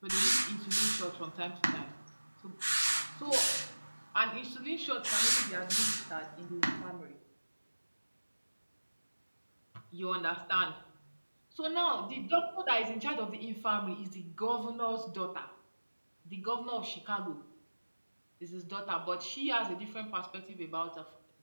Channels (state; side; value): inverted; both; correlation -1.00